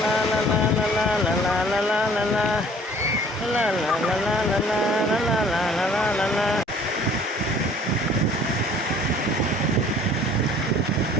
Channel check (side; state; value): both; normal; correlation 0.53